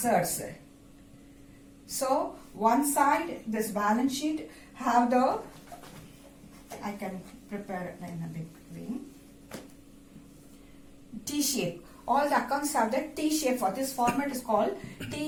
So one side, this balance sheet have the, I can prepare it in a big way, T-shape. All the accounts have the T-shape. For this format is called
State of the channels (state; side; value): identical; both; correlation 1.00